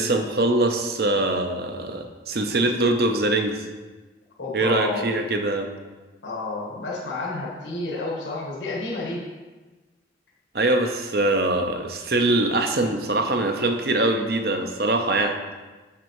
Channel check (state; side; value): normal; both; correlation 0.25